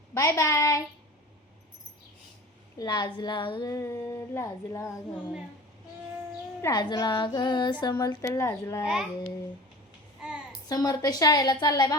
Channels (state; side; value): normal; both; correlation 0.39